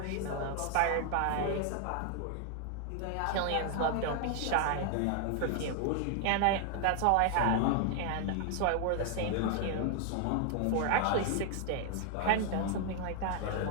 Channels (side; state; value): both; different; correlation 0.00